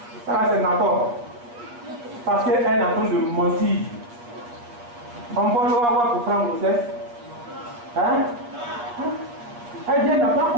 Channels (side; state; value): left; late; 8.4 ms